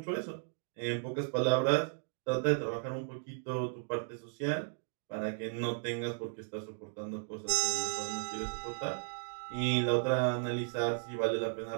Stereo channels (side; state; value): left; silent; digital silence